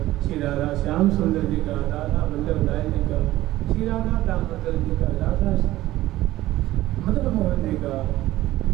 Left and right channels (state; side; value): quieter; left; 15.9 dB